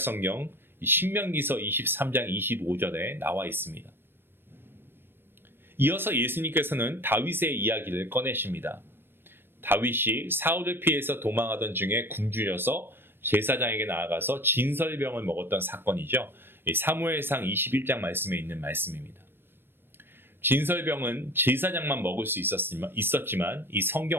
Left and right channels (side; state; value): left; late; 0.10 ms